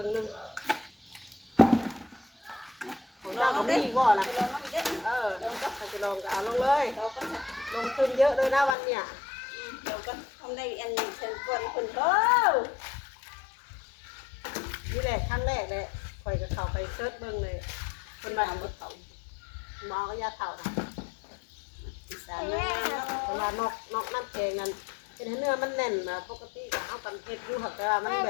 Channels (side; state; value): right; drops out; at 8.8 s